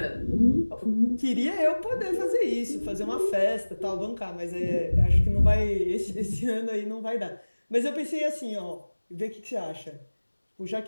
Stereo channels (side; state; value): both; inverted; correlation -1.00